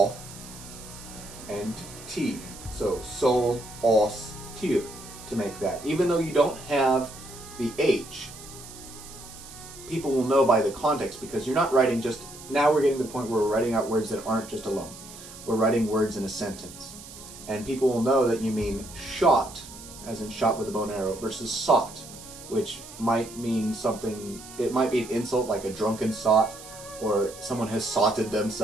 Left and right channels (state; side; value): noise; right; hiss, 16 dB below the sound